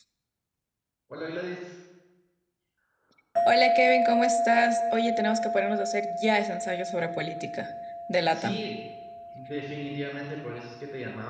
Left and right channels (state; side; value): identical; both; correlation 1.00